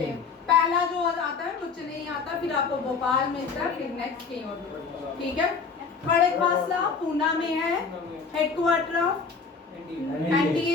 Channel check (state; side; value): quieter; right; 5.1 dB